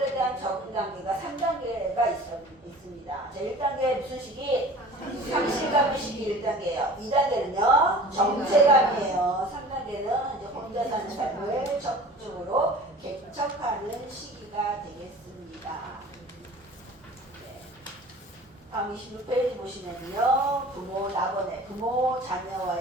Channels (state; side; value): normal; both; correlation 0.42